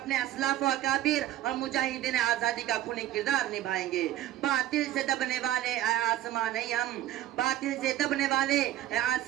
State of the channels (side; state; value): left; quieter; 13.3 dB